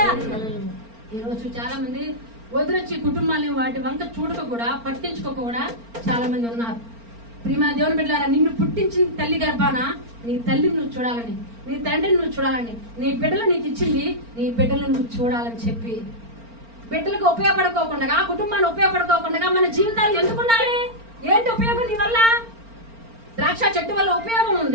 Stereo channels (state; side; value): late; left; 4.4 ms